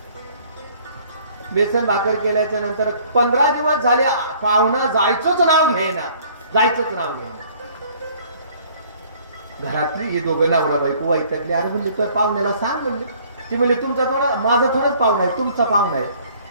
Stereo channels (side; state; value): both; inverted; correlation -0.57